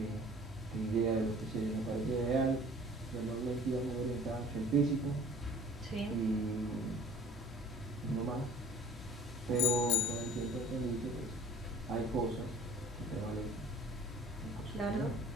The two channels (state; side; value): normal; both; correlation 0.49